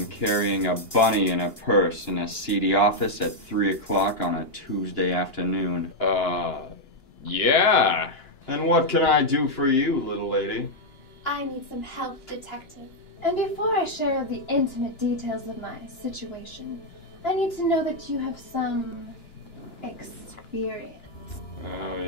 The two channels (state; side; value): late; right; 2.9 ms